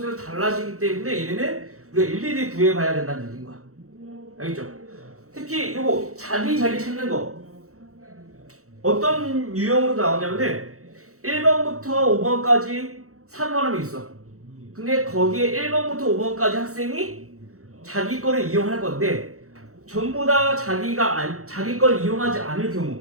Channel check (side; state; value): left; late; 0.64 ms